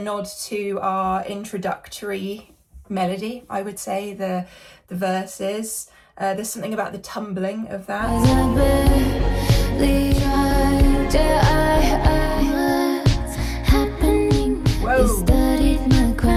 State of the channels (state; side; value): identical; both; correlation 1.00